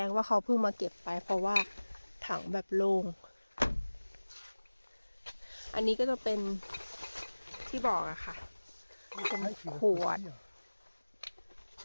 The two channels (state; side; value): inverted; both; correlation -1.00